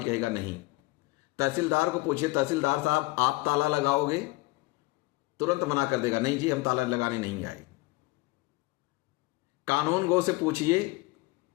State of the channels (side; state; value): right; quieter; 21.9 dB